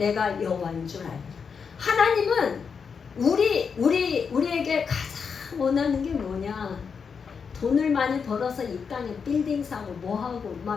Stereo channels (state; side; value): quieter; right; 6.0 dB